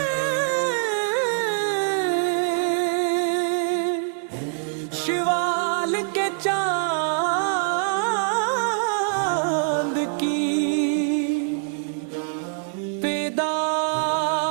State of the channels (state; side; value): silent; left; 58 dB below the other